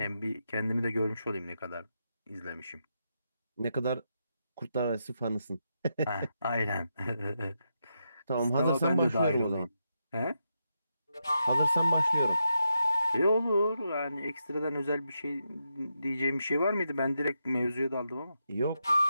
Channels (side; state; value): both; inverted; correlation -0.84